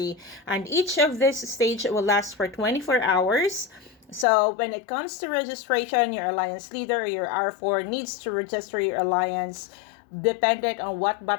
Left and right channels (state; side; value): drops out; right; at 4.2 s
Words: And each of this stage will last for 24 hours. So when it comes to registration, your alliance leader, your R4, needs to register your alliance dependent on what